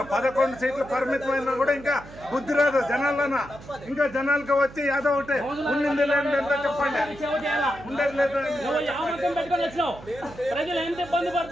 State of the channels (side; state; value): right; noise; hum, 18 dB below the sound